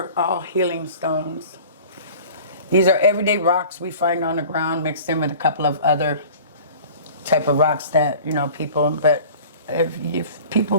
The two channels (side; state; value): both; inverted; correlation -0.43